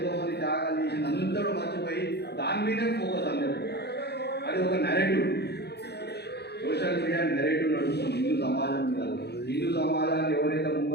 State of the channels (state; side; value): late; right; 0.48 ms